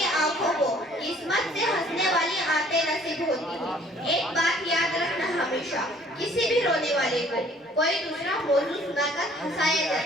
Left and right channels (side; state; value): both; normal; correlation 0.57